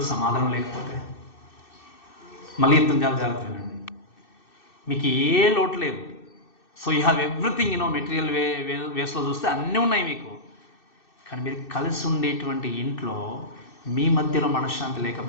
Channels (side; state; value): right; late; 2.6 ms